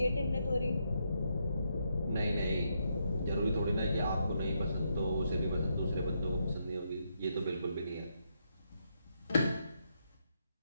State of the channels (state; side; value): inverted; both; correlation -0.79